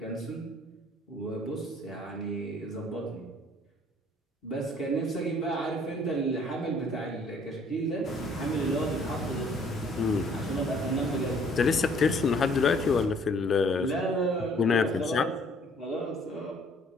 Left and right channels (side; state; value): both; normal; correlation 0.59